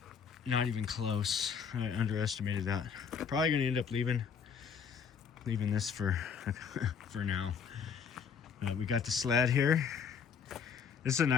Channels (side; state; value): right; quieter; 6.6 dB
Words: Not even close. I underestimated that. Probably gonna end up leaving this for for now. We got the sled here. This is a